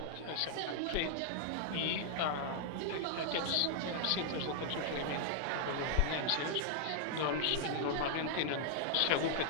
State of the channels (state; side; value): different; both; correlation -0.01